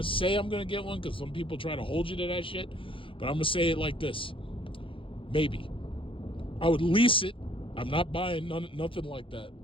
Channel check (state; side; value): late; right; 0.25 ms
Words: say I'm gonna get one, because some people try to hold you to that shit. But I'm gonna say it like this: maybe. I would lease it. I'm not buying nothing like that.